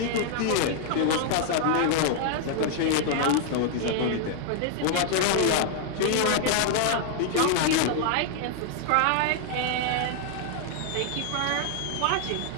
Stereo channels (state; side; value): different; both; correlation 0.00